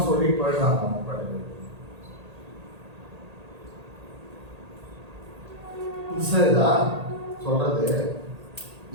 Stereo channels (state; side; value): late; left; 1.8 ms